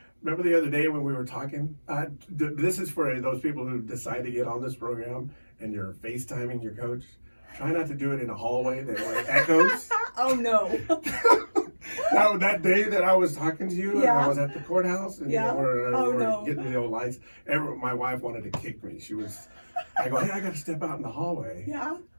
Remember the other day when we were talking? This is for those people who decide to get on this program and you're FaceTiming your coach. Try not to do it in a hallway that echoes. Oh, no. That day that I was talking to you, I was at the courthouse, and we're getting the old lights. My wife wanted to kick me. I go, hey, I got to step out in the hallway. Yeah.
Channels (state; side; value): inverted; both; correlation -1.00